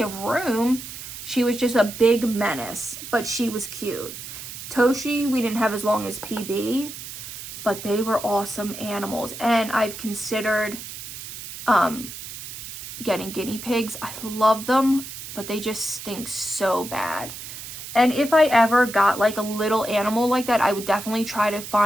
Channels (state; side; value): noise; right; hiss, 11 dB below the sound